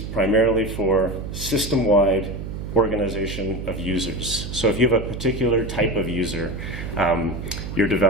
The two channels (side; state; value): right; noise; hum, 7 dB below the sound